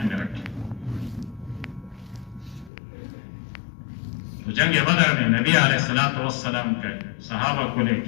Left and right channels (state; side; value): drops out; right; at 2.7 s